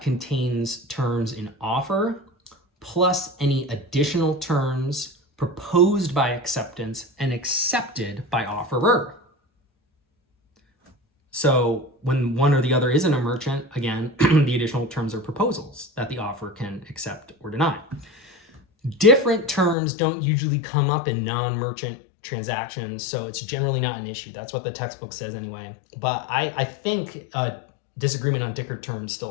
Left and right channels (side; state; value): right; drops out; at 19.8 s